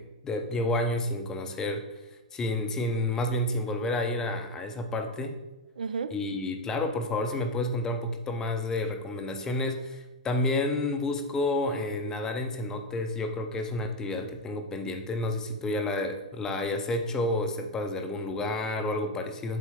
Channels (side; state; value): both; normal; correlation 0.12